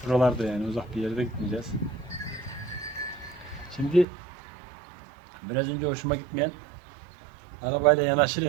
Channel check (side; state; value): left; drops out; at 4.0 s